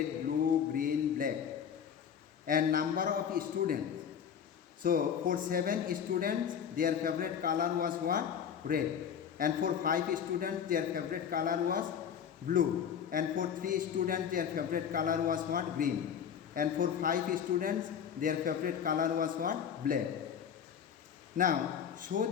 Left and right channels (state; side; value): quieter; right; 8.1 dB